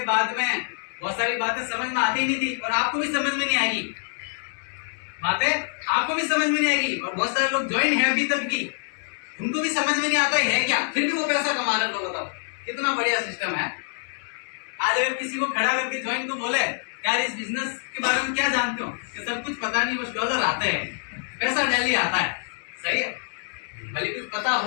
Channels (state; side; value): silent; right; 61 dB below the other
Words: बाद में बहुत सारी बातें समझ में आती नहीं थी और आपको भी समझ में नहीं आएगी, बातें आपको भी समझ में नहीं आएगी। और बहुत सारे लोग ज्वाइन है अभी तक भी, उनको भी समझ में नहीं आता है क्या, फिर भी वो पैसा कमा रहे हैं। बताओ कितना बढ़िया सिस्टम है। आज अगर किसी को खड़ा करके ज्वाइन को बोले यार इस बिजनेस के बारे में क्या जानते हो, कि सब कुछ पता नहीं, बस डॉलर आते हैं, पैसा डेली आता है। सही है। भले कुछ पता